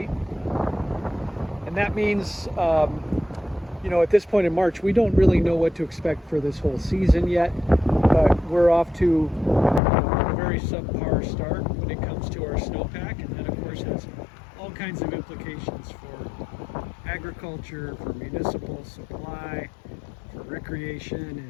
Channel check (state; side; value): drops out; right; at 9.8 s